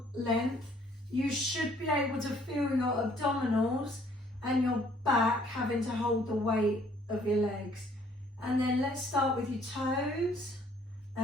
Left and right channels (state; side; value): normal; both; correlation 0.61